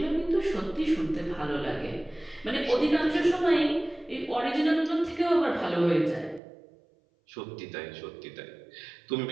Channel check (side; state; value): left; drops out; at 6.4 s